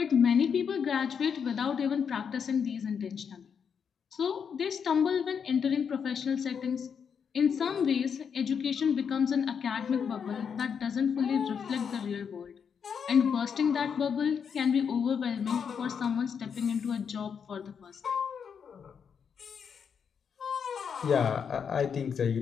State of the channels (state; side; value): quieter; right; 6.9 dB